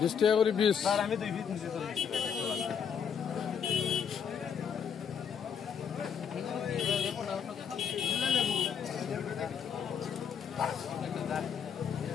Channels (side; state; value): right; quieter; 7.3 dB